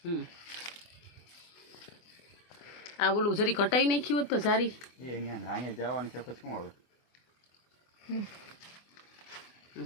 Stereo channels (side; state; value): right; late; 24 ms